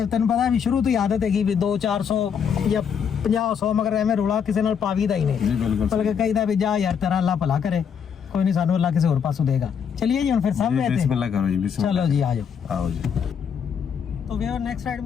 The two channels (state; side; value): quieter; right; 7.3 dB